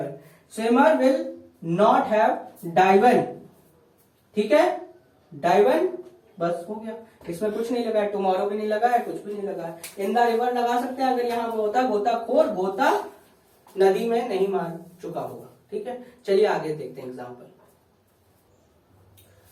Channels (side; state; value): both; identical; correlation 1.00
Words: स्विमर विल नॉट हैव डाइवन, ठीक है, डाइवन, बस हो गया। इसमें कुछ नहीं लगा है, टुमारो भी नहीं लगा है, कुछ भी नहीं लगा है। इन द रिवर लगा सकते हैं अगर यहाँ होता गोताखोर, गोता नदी में नहीं मार चुका होगा, ठीक है। चलिए आगे देखते हैं एग्जाम्पल।